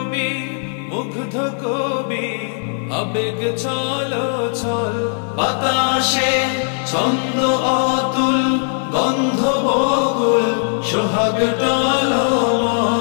মুগ্ধ কবি আবেগ ছলো ছল বাতাসে ছন্দ অতুল গন্ধ বকুল সোহাগ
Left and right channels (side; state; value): right; silent; 67 dB below the other